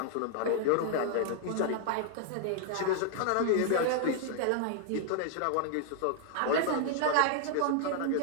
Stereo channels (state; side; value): different; both; correlation -0.01